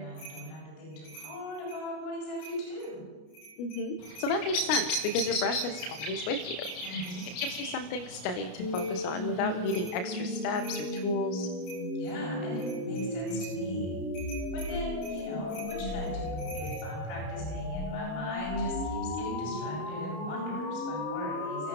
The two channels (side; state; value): right; late; 33 ms